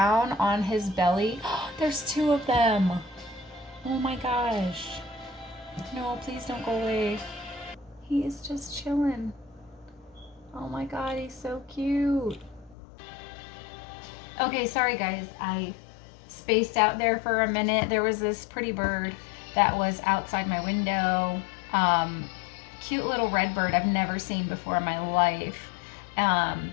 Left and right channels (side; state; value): right; drops out; at 12.8 s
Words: on his belly. There's two of them. Oh my gosh. No, please don't go away. He is just chilling. Oh my god, he's so cute. Okay, sorry guys. I spaced out there for a minute. There was this pretty bird that was outside my window. Cute little red bird I've never seen before in my life.